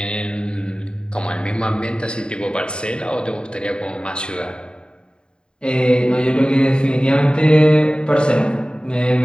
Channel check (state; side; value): late; right; 0.051 ms